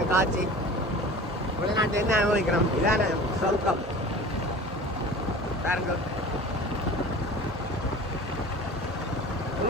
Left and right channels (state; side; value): normal; both; correlation 0.39